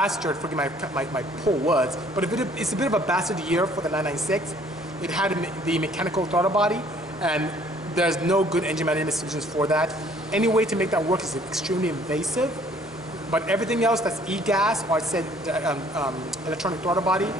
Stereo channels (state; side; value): normal; both; correlation 0.59